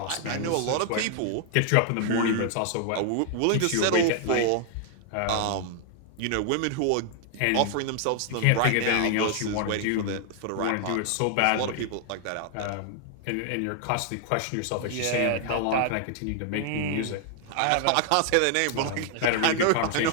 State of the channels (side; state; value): both; different; correlation 0.00